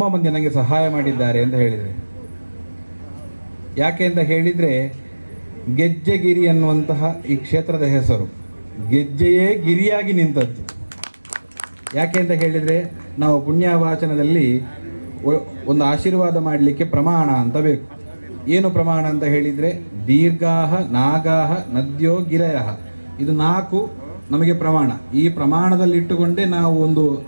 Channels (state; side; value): inverted; both; correlation -1.00